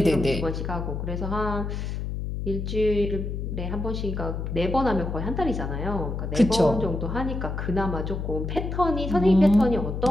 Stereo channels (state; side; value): noise; left; hum, 4 dB below the sound